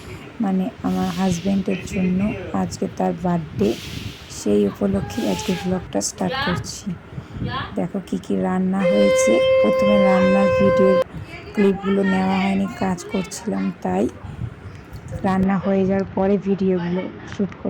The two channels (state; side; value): identical; both; correlation 1.00